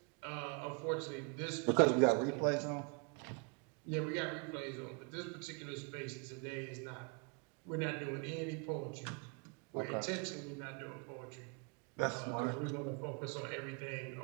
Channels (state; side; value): quieter; left; 36.0 dB